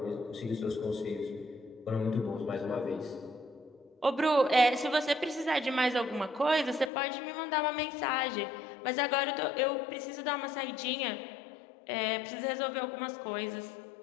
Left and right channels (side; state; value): right; drops out; at 6.9 s